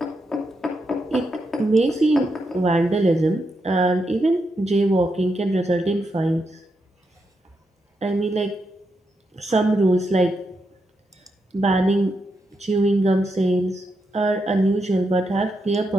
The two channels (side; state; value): both; normal; correlation 0.83